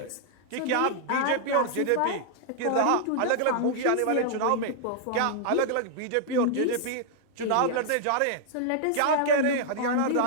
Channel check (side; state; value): both; different; correlation -0.01